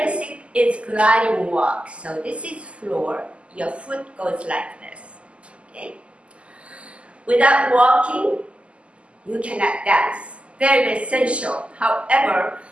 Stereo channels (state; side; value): late; left; 0.057 ms